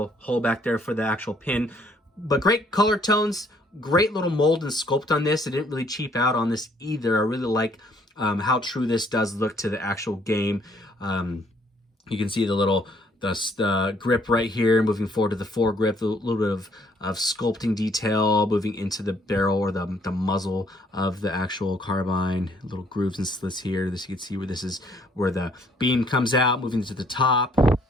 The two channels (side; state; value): both; normal; correlation 0.65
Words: hole back there for the actual pin. But great color tones, great little mold and sculpt on this. It didn't really cheap out on this either. I really like how true this does look to the actual game. You can see the little... the grip right here, moving forward to the foregrip, a little bit of sculpting detail, moving into the barrel or the muzzle of the actual carbine, little grooves and slits here. This, you can see where this is where the beam comes out, moving to the top.